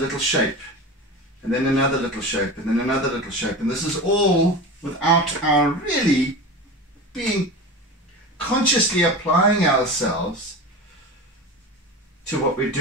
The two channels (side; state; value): both; normal; correlation 0.29